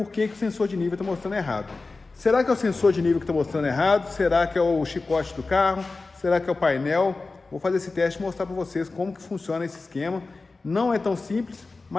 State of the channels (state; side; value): quieter; right; 3.7 dB